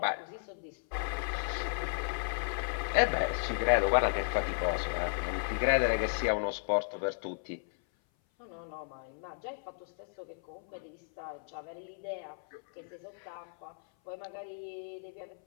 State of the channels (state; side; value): silent; right; 55 dB below the other